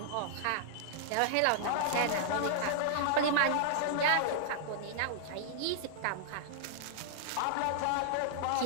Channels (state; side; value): different; both; correlation -0.01